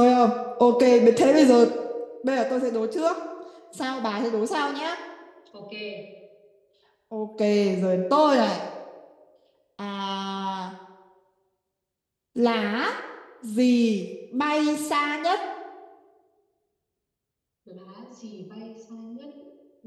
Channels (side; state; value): both; identical; correlation 1.00